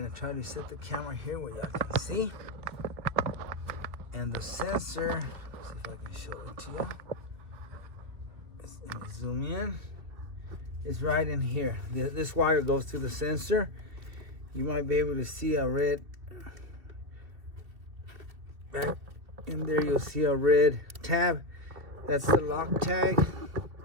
try to set the camera here where y'all can see. And the sensor, see if I can show it to y'all. Let me zoom in. It's right in here. This wire goes to the sensor. You might be able to see a red, back in there you'll see a red tab. That's the lock tag.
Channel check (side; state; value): left; late; 2.5 ms